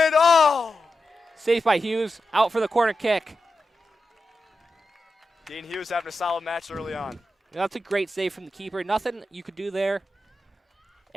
Oh! Saved by Hughes. Out for the corner kick. Dean Hughes having a solid match early on. That's a great save from the keeper. Nothing you could do there.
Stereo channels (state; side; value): normal; both; correlation 0.89